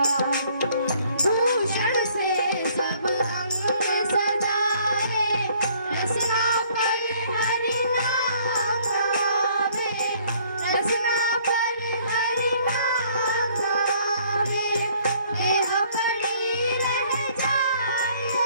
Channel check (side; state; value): both; inverted; correlation -0.61